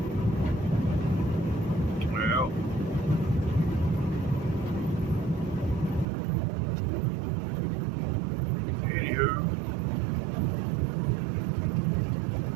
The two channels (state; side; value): drops out; left; at 6.1 s